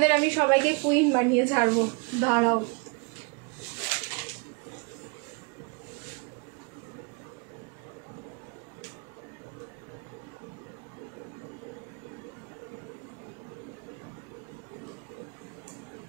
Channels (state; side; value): quieter; left; 33.6 dB